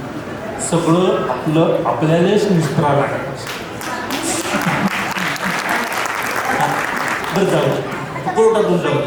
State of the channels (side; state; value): both; identical; correlation 1.00